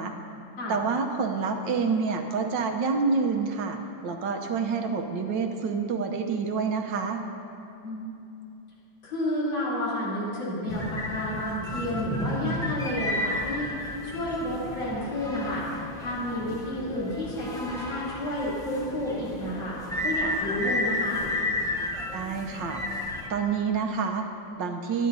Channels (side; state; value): both; normal; correlation 0.02